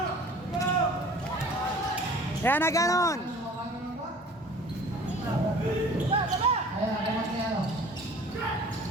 Yan na ganon.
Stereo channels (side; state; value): both; normal; correlation 0.47